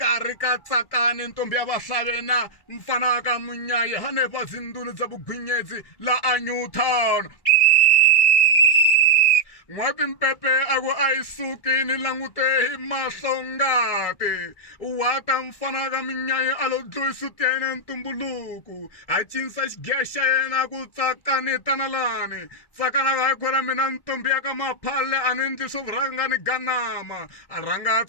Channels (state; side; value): late; right; 1.7 ms